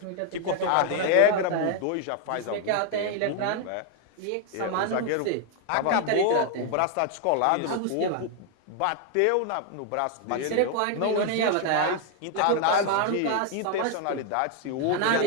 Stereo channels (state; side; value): different; both; correlation 0.00